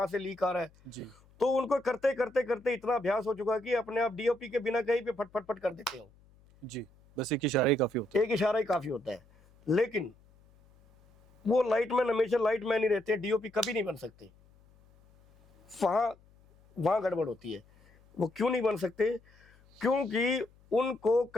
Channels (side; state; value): left; noise; hum, 29 dB below the sound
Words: से लीक आ रहा है। जी तो उनको करते करते करते इतना अभ्यास हो चुका है कि अपने आप डीओपी के बिना कहीं पे फट फट फट कर देते हो। जी बस एक इशारा ही काफी होता है। एक इशारा ही काफी होता है। लेकिन वो लाइटमैन हमेशा लाइटमैन ही रहते हैं, डीओपी कभी नहीं बन सकते। वहां गड़बड़ होती है। वो क्यों नहीं बन सकते? क्योंकि उनको